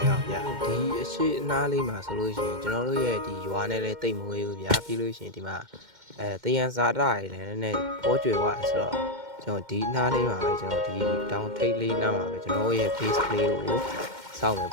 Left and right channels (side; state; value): left; late; 2.1 ms